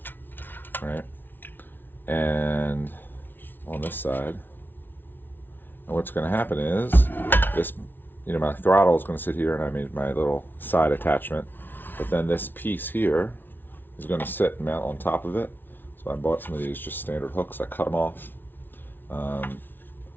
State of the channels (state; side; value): late; right; 0.096 ms